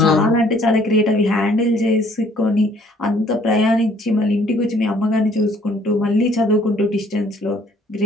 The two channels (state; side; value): normal; both; correlation 0.60